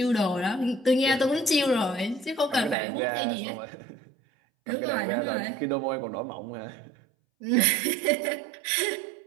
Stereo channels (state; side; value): drops out; left; at 2.8 s